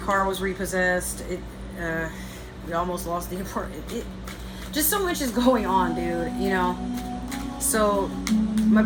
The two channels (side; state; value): both; identical; correlation 1.00